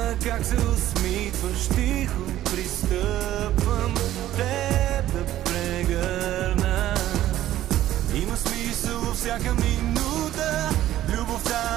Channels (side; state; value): left; quieter; 13.5 dB